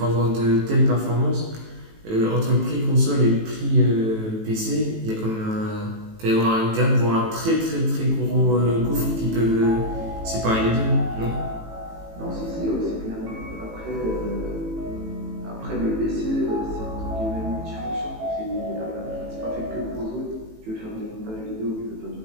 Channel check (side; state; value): left; late; 18 ms